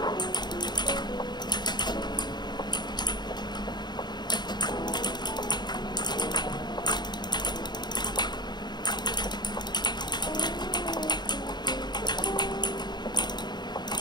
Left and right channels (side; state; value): right; late; 0.21 ms